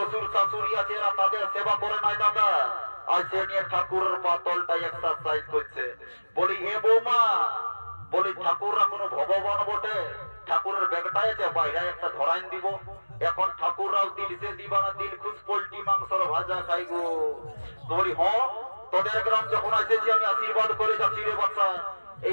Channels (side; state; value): both; inverted; correlation -1.00